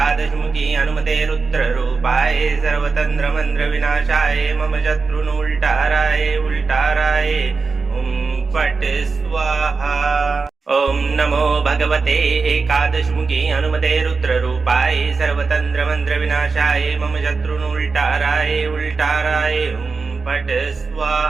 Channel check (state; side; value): quieter; left; 4.5 dB